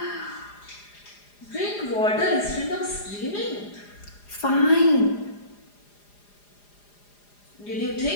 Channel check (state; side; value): late; right; 4.9 ms